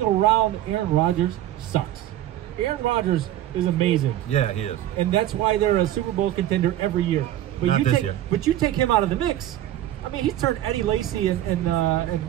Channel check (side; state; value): left; quieter; 13.0 dB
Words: around Aaron Rodgers sucks. Aaron Rodgers is amazing. Yeah, he is. And that's why they're a Super Bowl contender every year. But Not you this take, year. But you take him out of the mix. I mean, he's turned Eddie Lacy and